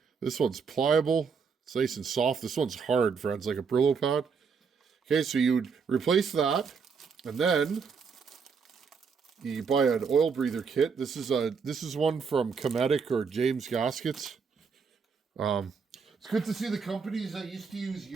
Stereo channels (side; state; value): left; quieter; 5.7 dB